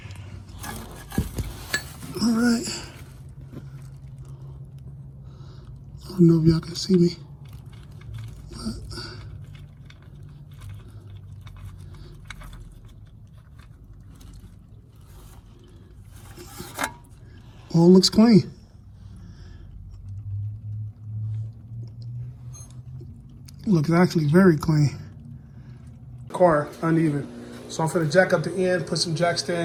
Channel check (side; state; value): both; identical; correlation 1.00